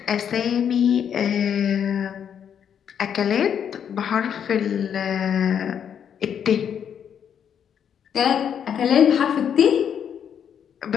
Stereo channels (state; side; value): quieter; right; 8.4 dB